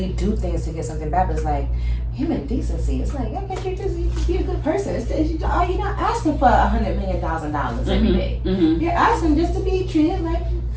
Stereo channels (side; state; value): both; identical; correlation 1.00